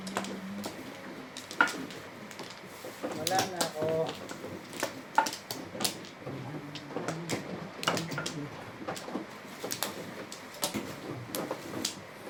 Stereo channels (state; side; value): identical; both; correlation 1.00